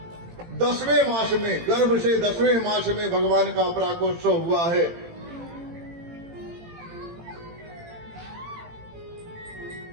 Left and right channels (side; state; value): left; late; 18 ms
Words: 10वें मास में, गर्भ से 10वें मास में भगवान का प्राकोत्सव हुआ है।